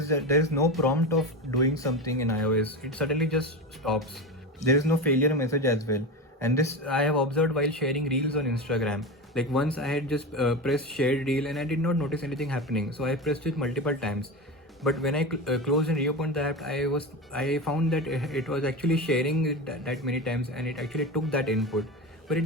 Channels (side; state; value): both; normal; correlation 0.22